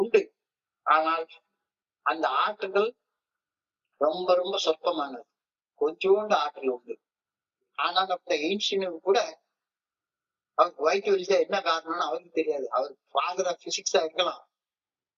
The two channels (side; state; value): both; identical; correlation 1.00